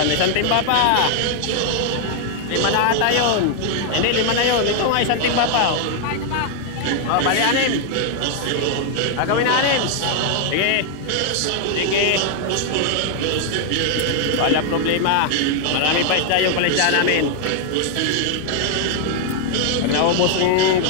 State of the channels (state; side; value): different; both; correlation 0.00